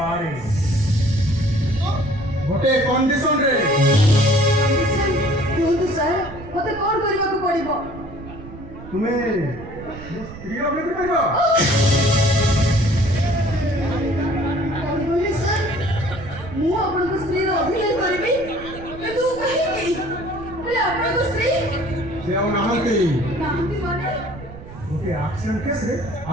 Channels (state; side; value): noise; right; rumble, 15 dB below the sound